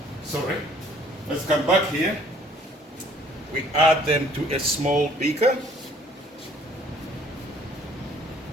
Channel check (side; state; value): both; normal; correlation 0.58